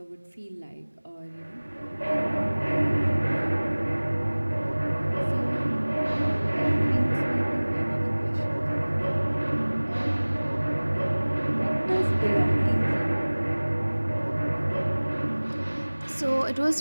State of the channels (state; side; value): inverted; both; correlation -1.00